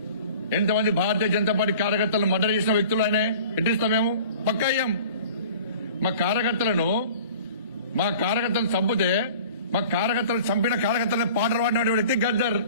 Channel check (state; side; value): inverted; both; correlation -0.44